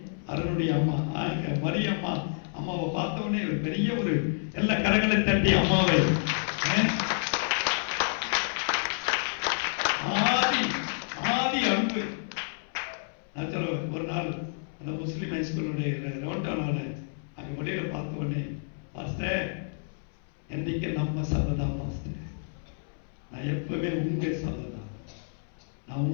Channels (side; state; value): right; silent; 58 dB below the other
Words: அருளுடைய அம்மா மரியம்மா அம்மாவை பார்த்தவொடனே பெரிய ஒரு எல்லா கரங்களை தட்டி அம்மாவை ஆதி அன்பு. நான் சொல்லுவேன், ஒரு நாள் அந்த முஸ்லிம் ஹைஸ்கூலுடைய ரவுண்டான அங்க வெளியில பார்த்த உடனே, பாஸ்டர் என்னைக்கு நம்ம சபைதான் பாஸ்டர், நான் எப்பவுமே உங்க சபைதான், நான்